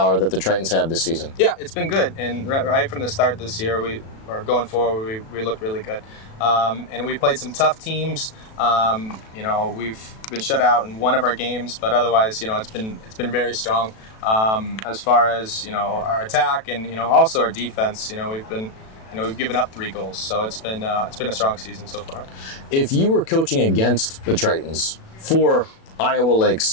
that the Tritons have this season. Yeah, it's been good, and right from the start this year, going forward, we looked really good. And we played some tough teams. We've been shut out in one of our games, but otherwise, it's been very strong. As far as our attack and also our defense, we've given up 3 goals, so it's been a strong season so far. If you were coaching against the Tritons for Iowa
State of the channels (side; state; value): right; late; 37 ms